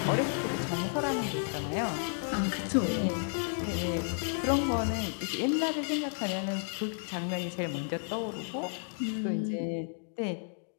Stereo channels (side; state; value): right; silent; digital silence